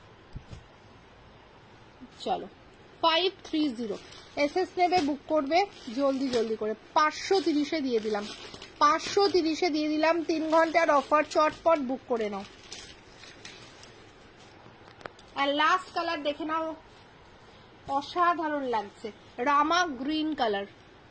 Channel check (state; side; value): identical; both; correlation 1.00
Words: চলো 530 এসএস নেবে, বুক করবে জলদি জলদি করে। 530-এ দিয়ে দিলাম, 530-এ দিয়ে দিলাম। 3 ঘন্টার অফার, চটপট বুক করে নাও। আর লাস্ট কালার দেখে নাও, অসাধারণ লাগছে, রামা গ্রিন কালার,